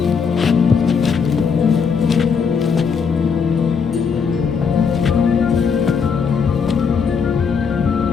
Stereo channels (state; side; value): quieter; right; 6.0 dB